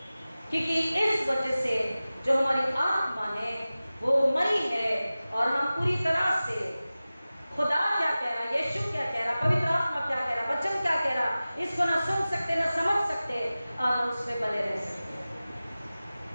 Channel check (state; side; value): inverted; both; correlation -0.97